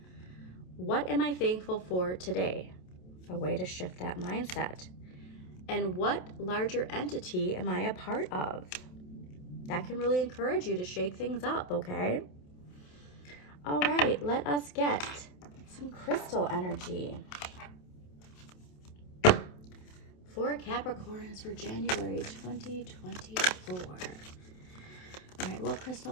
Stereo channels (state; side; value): late; right; 27 ms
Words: What am I thankful for today? A way to shift that mindset. And what larger entity am I a part of? That can really encourage you to shake things up, okay? All right, let us get some crystal energy for Capricorns for January 2024. All right, what